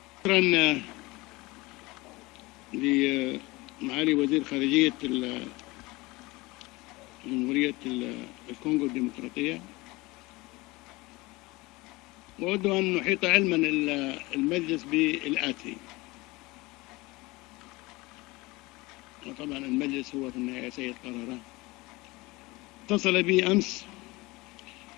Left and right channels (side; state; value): right; quieter; 22.2 dB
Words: لمعالي وزير خارجية جمهورية الكونغو الديمقراطية، وأود أن نحيط علما المجلس بالآتي. وطبعا المجلس هو في النهاية سيد قراره. اتصل بي أمس